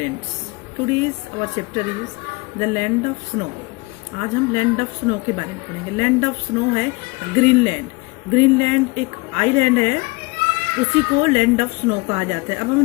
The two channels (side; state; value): right; quieter; 26.2 dB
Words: Today's our chapter is the land of snow. आज हम land of snow के बारे में पढ़ेंगे. लैंड ऑफ स्नो है ग्रीनलैंड. ग्रीनलैंड एक आइलैंड है, उसी को लैंड ऑफ स्नो कहा जाता है. अब